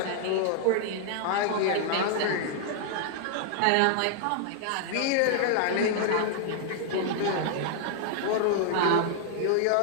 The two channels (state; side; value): different; both; correlation -0.01